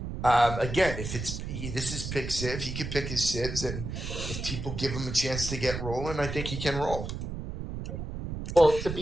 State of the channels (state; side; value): noise; right; rumble, 6 dB below the sound